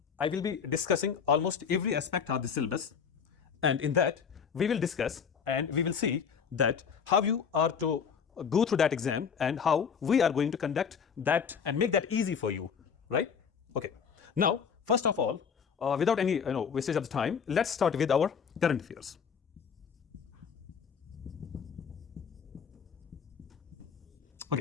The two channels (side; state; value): right; quieter; 6.7 dB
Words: I will be discussing almost every aspect of the syllabus, and in that we will discuss and we will see that how you are to go through that exam and how we are going to conduct that and make that easy for you, right? Okay. Now, first of all, without any wastage of the time, let's start with our current affairs.